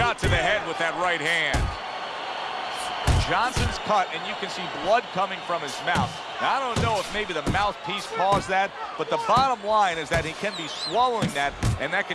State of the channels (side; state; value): both; identical; correlation 1.00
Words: to the head with that right hand. Johnson's cut, and you can see blood coming from his mouth. Now, I don't know if maybe the mouthpiece caused that, but the bottom line is that he can be swallowing that, and that